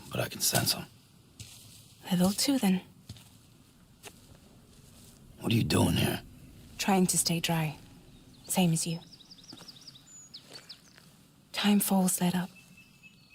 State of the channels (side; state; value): both; identical; correlation 1.00